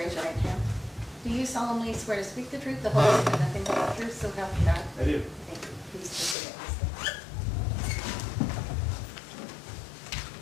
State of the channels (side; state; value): right; drops out; at 6.4 s